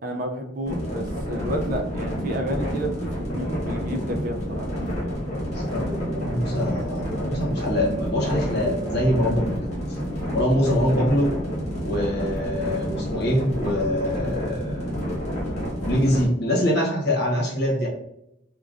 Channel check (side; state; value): both; normal; correlation 0.57